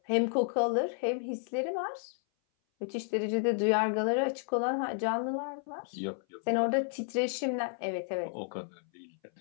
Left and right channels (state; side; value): silent; right; 56 dB below the other